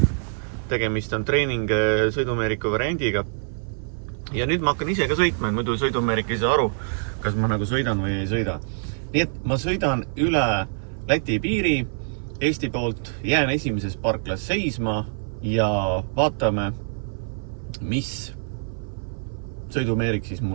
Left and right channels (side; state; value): left; silent; 57 dB below the other